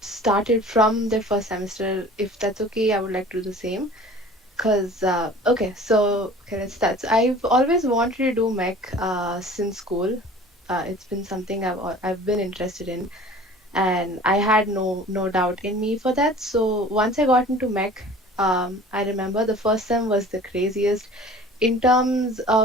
from their first semester, if that's okay, I would like to do the same. Cause okay, let's start. So I've always wanted to do mech since school. It's been something I've been interested in, and I had no doubt in me for that. So once I got into mech, I remember the first sem was the craziest in terms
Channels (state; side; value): normal; both; correlation 0.45